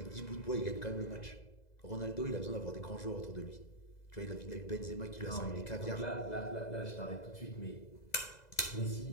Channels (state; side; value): late; right; 2.0 ms